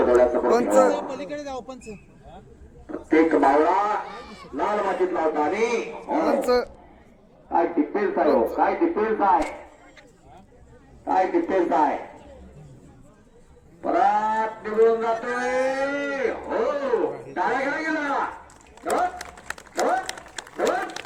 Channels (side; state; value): both; identical; correlation 1.00